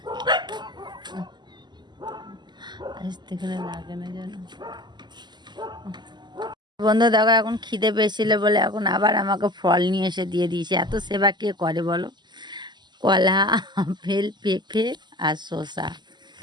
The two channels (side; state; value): left; late; 0.21 ms